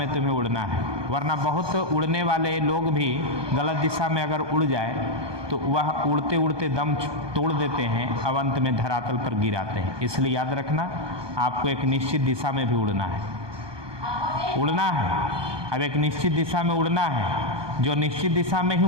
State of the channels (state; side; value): late; left; 1.2 ms